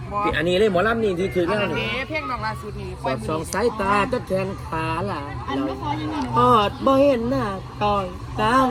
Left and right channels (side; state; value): both; identical; correlation 1.00